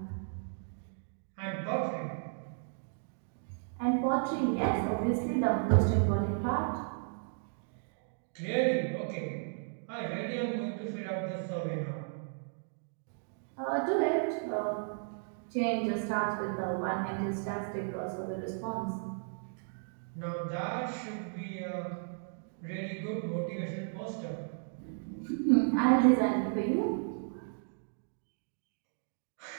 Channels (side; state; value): left; silent; digital silence